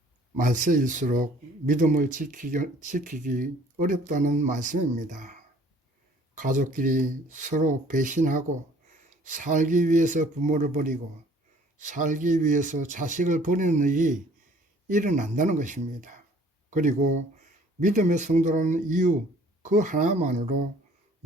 말세일수록 믿음을 지키기 어렵다는 말씀입니다. 가족끼리 서로 배신하고 살기 위해서 부모를 버리고 살기 위해서 자식을 버리는 일이 일어난다는 것입니다. 그리고 믿음의 성도라는 이유 그 하나만으로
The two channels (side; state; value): both; normal; correlation 0.55